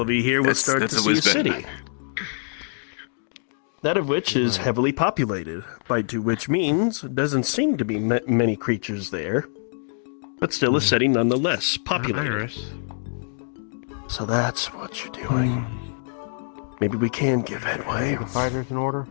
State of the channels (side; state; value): right; silent; digital silence